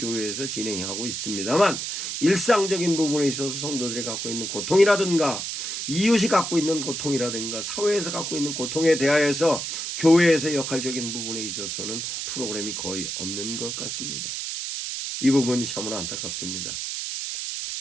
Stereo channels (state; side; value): noise; right; hiss, 4 dB below the sound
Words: 진행하고 있습니다만 일상적인 부분에 있어서 성도들이 갖고 있는 고통이라든가 이웃이 갖고 있는 고통이라든가 사회에서 갖고 있는 고통에 대하여서 교회에서 역할적인 부분에 있어서는 프로그램이 거의 없는 것 같습니다. 이 부분이 참으로 안타깝습니다.